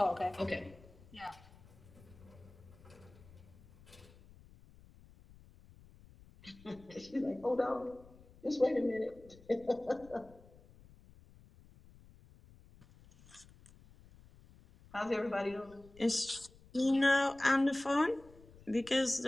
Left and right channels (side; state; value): left; noise; rumble, 23 dB below the sound